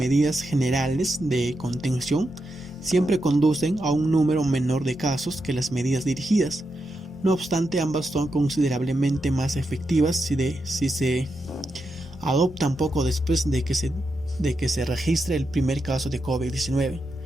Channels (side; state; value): both; normal; correlation 0.86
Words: generales de contención siempre conducen a un número menor de casos que las medidas dirigidas. No obstante, ambas son considerablemente más efectivas si se adoptan poco después de que se registre el primer caso de COVID-19.